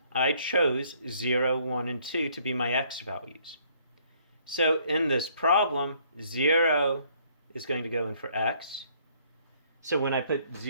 I chose 0, 1, and 2 to be my x values. So in this problem, 0 is going to go in for x. So when I put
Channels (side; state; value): both; inverted; correlation -0.64